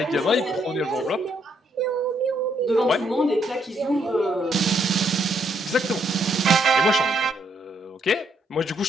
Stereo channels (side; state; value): both; normal; correlation 0.73